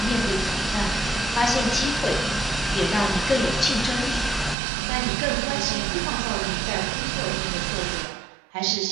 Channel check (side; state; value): left; drops out; at 4.5 s